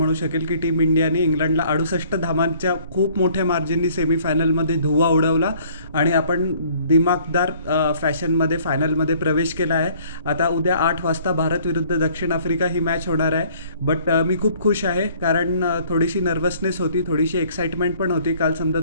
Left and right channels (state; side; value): inverted; both; correlation -0.57